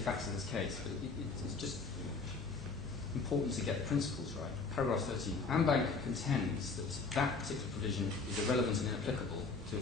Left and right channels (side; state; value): right; quieter; 4.2 dB